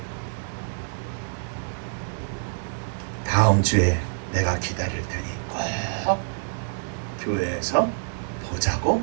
다음 주에 내가 기다릴 테니 꼭 교회에서 보자고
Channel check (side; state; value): left; silent; digital silence